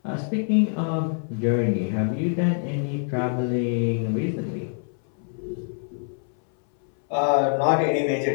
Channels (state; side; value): silent; right; 62 dB below the other